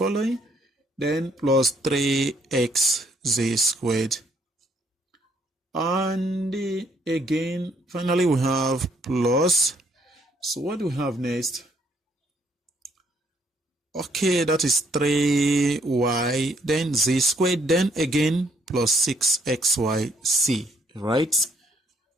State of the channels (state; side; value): normal; both; correlation 0.68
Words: then plus 3x z squared. And again, finally we have plus. So what do we have next? Okay, that is 3y, then z squared, then again plus 6xyc, right?